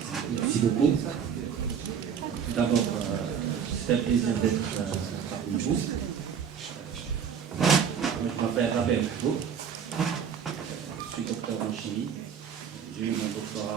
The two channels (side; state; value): left; quieter; 7.5 dB